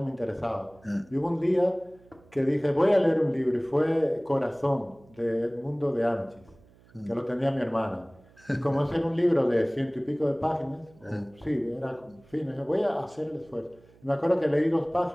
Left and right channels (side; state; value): right; noise; hum, 27 dB below the sound